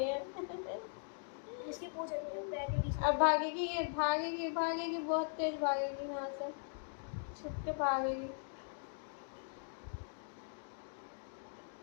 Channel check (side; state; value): right; silent; digital silence